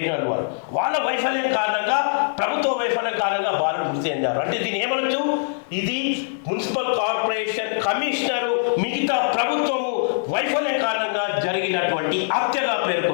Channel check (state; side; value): silent; right; digital silence